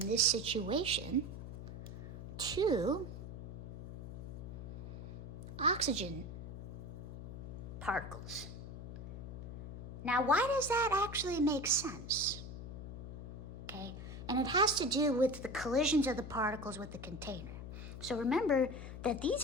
situation, 2 oxygen particles. Now, why does that actually make sense? Okay, and it has to do with the collisions of the particles with the container. So remember that these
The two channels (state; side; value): noise; left; hum, 9 dB below the sound